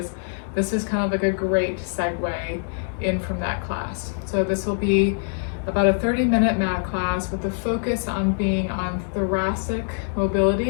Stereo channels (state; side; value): silent; right; 63 dB below the other